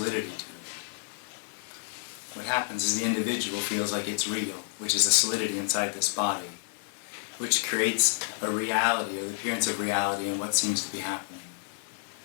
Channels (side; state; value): right; silent; 58 dB below the other